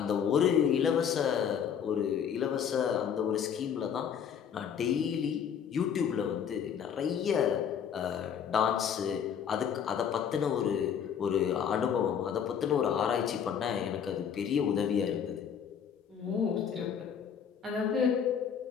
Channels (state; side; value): quieter; right; 7.9 dB